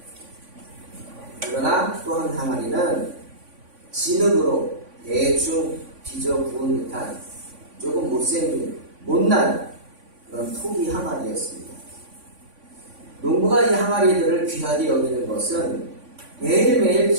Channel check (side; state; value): left; late; 3.5 ms